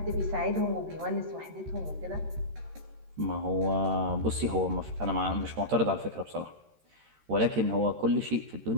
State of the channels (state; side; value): late; left; 13 ms